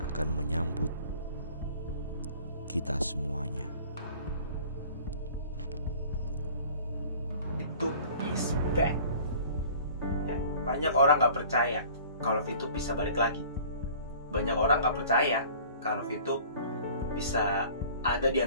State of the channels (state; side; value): inverted; both; correlation -0.48